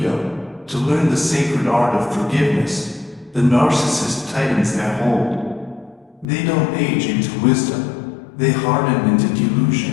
to learn the sacred art of forgiveness. The narcissist tightens their hold. They don't age into wisdom, they harden into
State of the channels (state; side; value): drops out; right; at 6.2 s